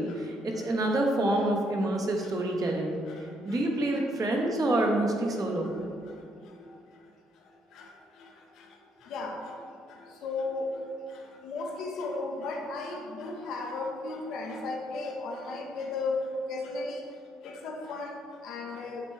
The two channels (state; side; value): normal; both; correlation 0.73